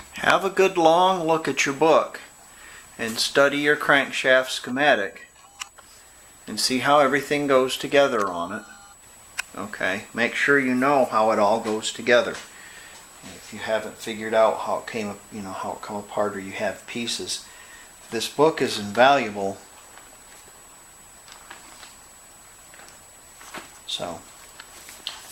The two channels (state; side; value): identical; both; correlation 1.00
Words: Have a good long look at your book and study your crankshaft schematic and see how everything goes together on it. Okay, make sure you know how it all goes together. If you haven't figured out how it came, how it come apart, or you have pieces, this book is invaluable. So,